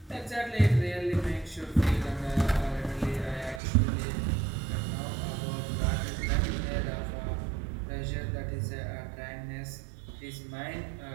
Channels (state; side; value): drops out; left; at 3.6 s